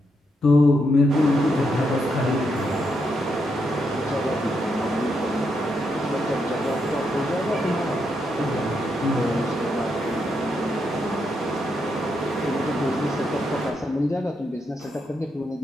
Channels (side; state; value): both; normal; correlation 0.80